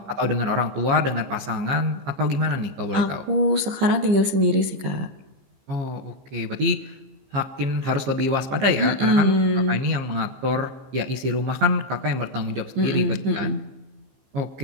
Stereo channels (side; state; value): left; late; 15 ms